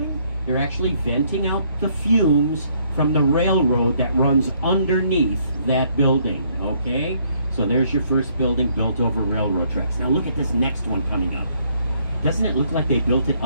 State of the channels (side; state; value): both; inverted; correlation -0.68